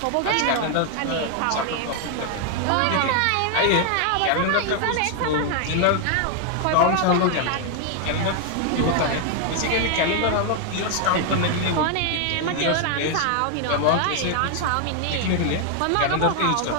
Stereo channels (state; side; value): different; both; correlation 0.00